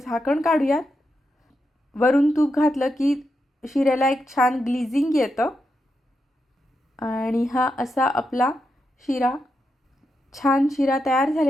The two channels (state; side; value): normal; both; correlation 0.85